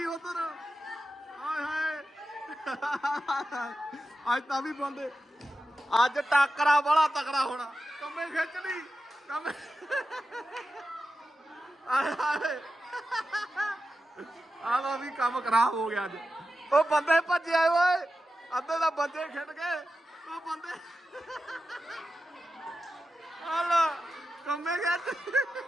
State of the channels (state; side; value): normal; both; correlation 0.91